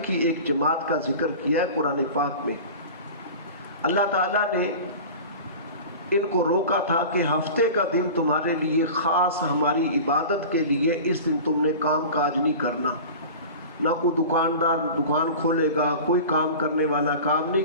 کی ایک جماعت کا ذکر کیا ہے قرآن پاک میں۔ اللہ تعالیٰ نے ان کو روکا تھا کہ ہفتے کا دن تمہارے لیے خاص ہماری عبادت کے لیے، اس دن تم نے کام کاج نہیں کرنا، نہ کوئی دکاندار دکان کھولے گا، کوئی کام کرنے والا کام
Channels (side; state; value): both; inverted; correlation -0.36